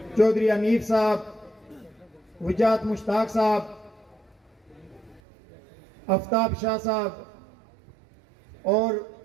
चौधरी अनीफ साहब, वजात मुश्ताक साहब, आफ्ताब शाह साहब और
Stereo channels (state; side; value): drops out; left; at 5.2 s